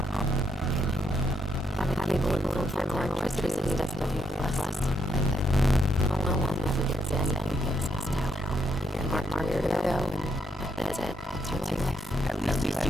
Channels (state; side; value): normal; both; correlation 0.76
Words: Having cable and full-time electricity is definitely less. No one ever gets anything gets messed out. You get Mark weirdo, and that's it. That's your life. At least you